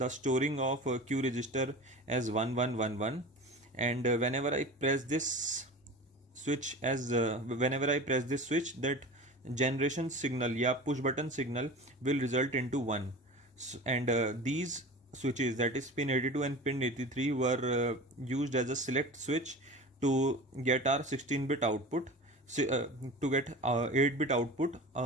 storing of Q register as 1111, and whenever I press this switch, that generation signal push button signal will result into 1. And these switches, that is pin 82 and pin 83, were used as a select switch to get our 16-bit output, to get 8-bit output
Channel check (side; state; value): both; normal; correlation 0.34